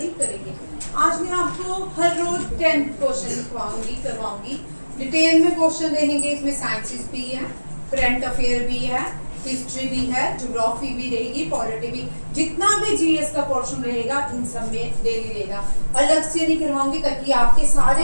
करेंगे। आज मैं आपको हर रोज 10 क्वेश्चन करवाऊंगी। डिटेल में क्वेश्चन रहेंगे। इसमें साइंसेस भी है, करंट अफेयर भी है, हिस्ट्री भी है, ज्योग्राफी भी रहेगी, पॉलिटी भी। जितना भी जीएस का पोर्शन रहेगा इन सब में डेली रहेगा। अलग से नहीं करवाऊंगी ताकि आपके सारे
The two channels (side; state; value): both; inverted; correlation -1.00